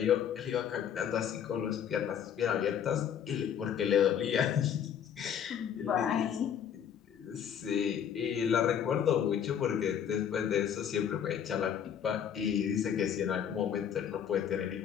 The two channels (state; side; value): quieter; right; 8.7 dB